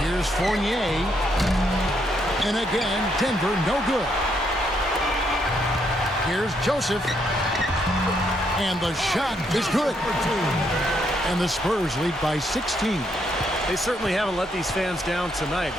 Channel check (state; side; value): normal; both; correlation 0.75